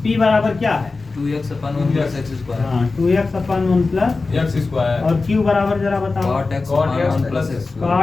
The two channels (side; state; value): right; quieter; 3.8 dB